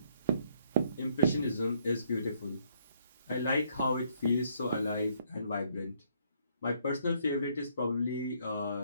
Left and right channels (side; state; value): both; inverted; correlation -0.67